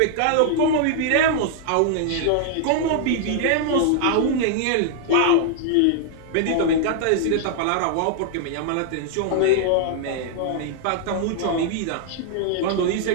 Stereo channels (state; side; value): different; both; correlation -0.01